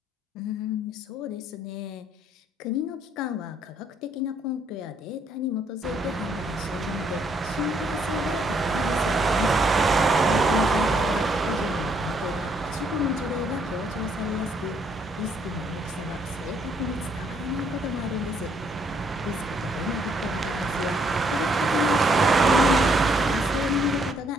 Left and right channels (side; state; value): both; normal; correlation 0.69